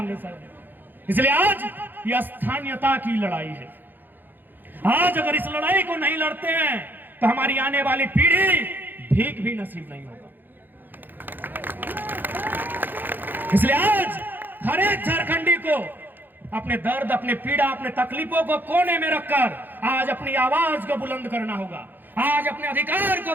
सर। इसलिए आज यह स्थानीयता की लड़ाई है। आज अगर इस लड़ाई को नहीं लड़ते हैं तो हमारी आने वाली पीढ़ी भीख भी नसीब नहीं होगा। इसलिए आज हर एक झारखंडी को अपने दर्द, अपने पीड़ा, अपने तकलीफों को कोने में रखकर आज अपनी आवाज को बुलंद करना होगा, आज अपने अधिकार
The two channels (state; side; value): late; left; 0.090 ms